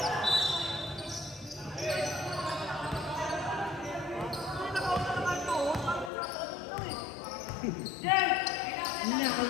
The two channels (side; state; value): right; drops out; at 6.1 s